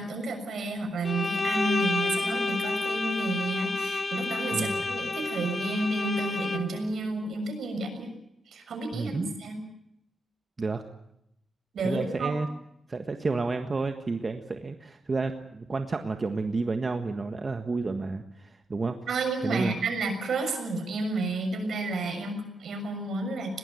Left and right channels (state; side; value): normal; both; correlation 0.84